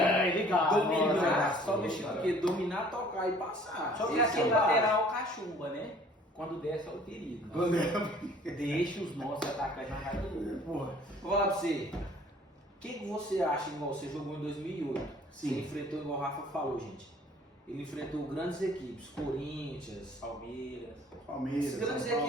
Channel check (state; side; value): normal; both; correlation 0.54